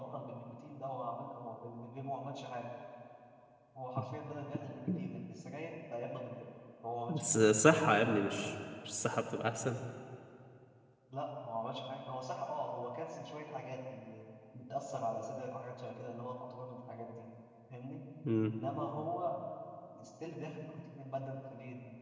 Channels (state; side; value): identical; both; correlation 1.00